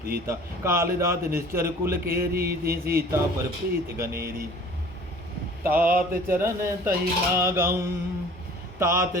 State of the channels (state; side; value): normal; both; correlation 0.48